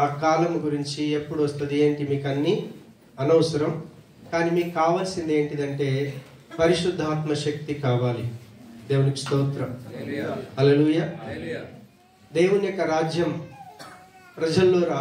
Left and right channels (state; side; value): identical; both; correlation 1.00